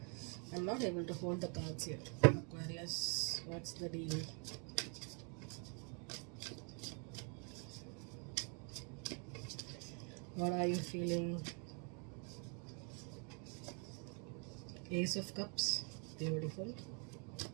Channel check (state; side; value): quieter; left; 37.5 dB